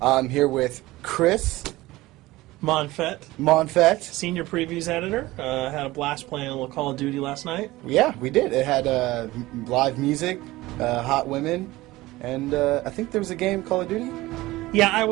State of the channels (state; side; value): quieter; left; 18.6 dB